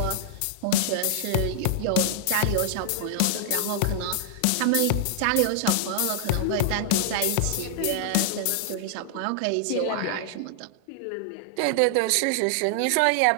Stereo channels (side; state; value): both; different; correlation -0.01